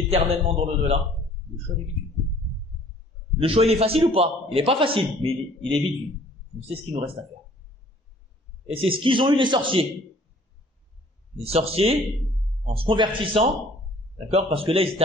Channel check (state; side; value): normal; both; correlation 0.55